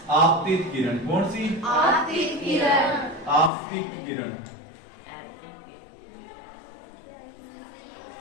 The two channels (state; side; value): drops out; right; at 3.5 s